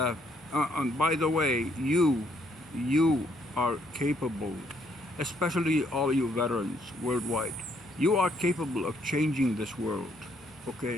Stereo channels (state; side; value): normal; both; correlation 0.70